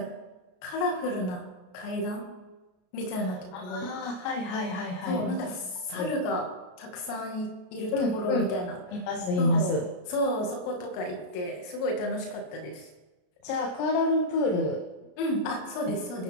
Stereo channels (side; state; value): right; late; 33 ms